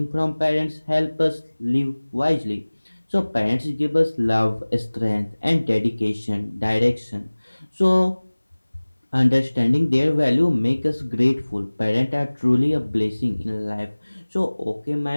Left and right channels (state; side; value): inverted; both; correlation -1.00